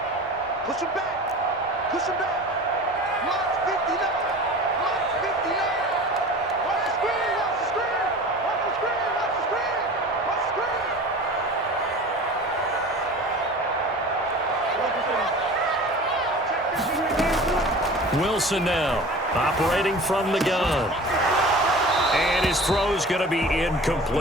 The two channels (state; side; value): normal; both; correlation 0.39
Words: Push him back. Push him back. Lock 59. Lock 59. Watch the screen. Watch the screen. Watch the screen. Watch the screen. Watch the screen. Wilson now operating from the gun. And his throw's going to be